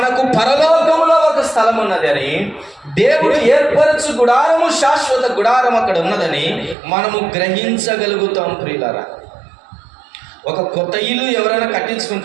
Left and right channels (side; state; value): left; drops out; at 6.8 s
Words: పరలోకములో ఒక స్థలం ఉన్నది అని, దేవుడు ఏర్పరచు గుడారము శాశ్వత గుడారం అక్కడ ఉన్నదని మనము గ్రహించగలుగుతాం ప్రియులారా. ఒక కొత్త ఇల్లు ఎవరైనా